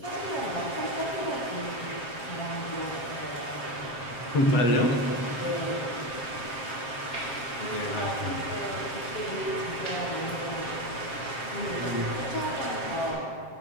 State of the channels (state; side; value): late; right; 7.5 ms